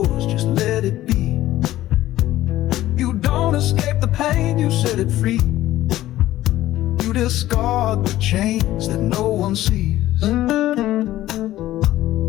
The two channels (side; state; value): right; quieter; 14.8 dB